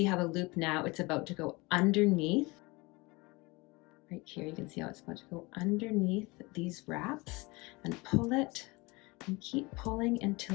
how the loop now, it's about to go underneath. Right here, you can see how it's about to go underneath these wraps, and pull it and keep pulling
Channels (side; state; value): right; quieter; 24.6 dB